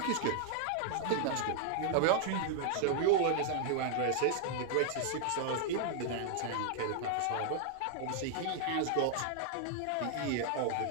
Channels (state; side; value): different; both; correlation 0.00